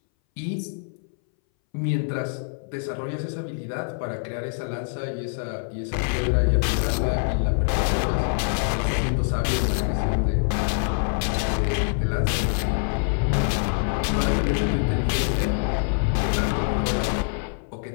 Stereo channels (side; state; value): right; silent; 61 dB below the other